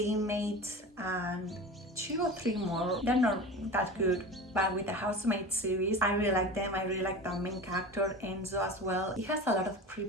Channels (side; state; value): both; normal; correlation 0.32